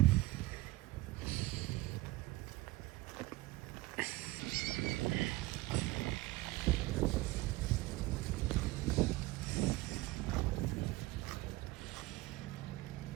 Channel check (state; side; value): quieter; left; 19.6 dB